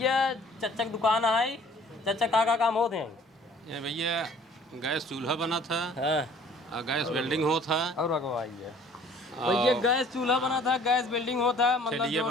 चच्चा की दुकान है चच्चा का काम होते हैं ये भैया गैस चूल्हा बना था हाँ गैस वेल्डिंग हो था और भैया गैस चूल्हा बना था गैस बिल्डिंग होता मतलब ठेलिया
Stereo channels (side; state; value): both; normal; correlation 0.53